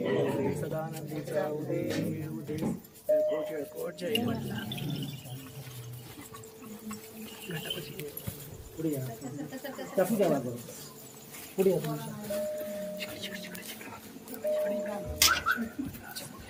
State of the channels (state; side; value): identical; both; correlation 1.00